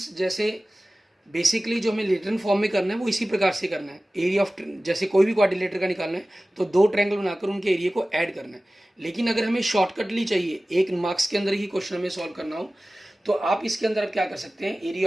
जैसे बेसिकली जो हमें रिटर्न फॉर्म में करना है वो इसी प्रकार से करना है, एरिया ऑफ जैसे कोई भी क्वाड्रिलेटर का निकालना है तो दो ट्रायंगल बनाकर उनके एरिया को ऐड करना है। लेकिन अगर हमें शॉर्टकटली चाहिए, एक मार्क्स के अंदर ही क्वेश्चन हमें सॉल्व करना हो, तो आप इसके अंदर आप क्या कर सकते हैं,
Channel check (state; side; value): normal; both; correlation 0.97